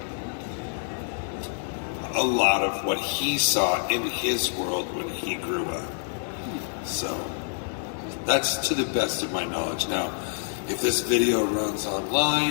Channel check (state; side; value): silent; right; digital silence